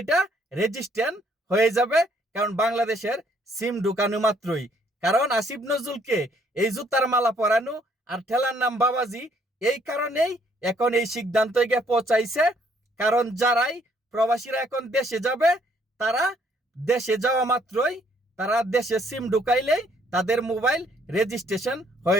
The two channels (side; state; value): both; normal; correlation 0.66